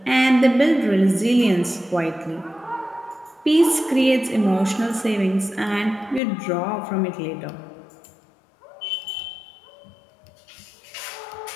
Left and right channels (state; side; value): drops out; right; at 6.2 s